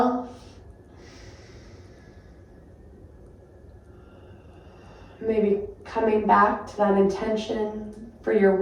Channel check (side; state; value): both; identical; correlation 1.00